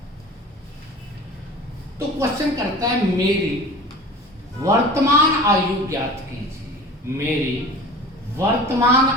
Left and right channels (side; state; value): both; normal; correlation 0.38